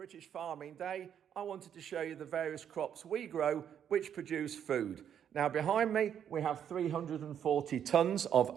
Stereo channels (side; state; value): left; quieter; 9.0 dB